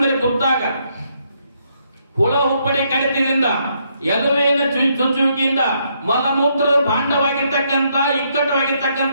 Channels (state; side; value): inverted; both; correlation -0.74